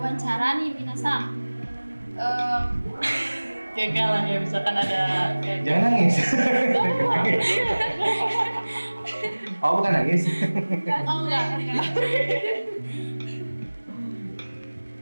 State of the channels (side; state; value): both; inverted; correlation -1.00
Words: nih minasan, Gagal lah ya, misalkan ada kayak Jangan nangis. Oh, bukan nangis. oh enggak.